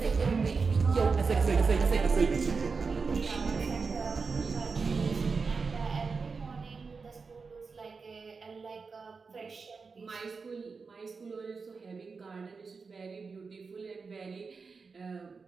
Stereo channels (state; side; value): quieter; left; 4.8 dB